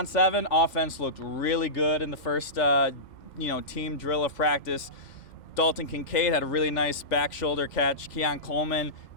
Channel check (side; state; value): right; late; 2.1 ms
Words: offense looked really good in the first, team drill of practice. Dalton Kincaid had a really nice back shoulder catch. Keon Coleman